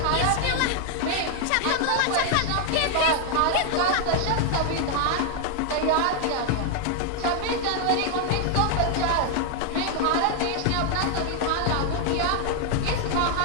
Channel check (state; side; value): different; both; correlation 0.00